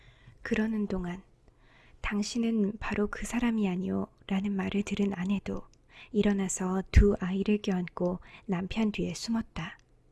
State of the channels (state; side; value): identical; both; correlation 1.00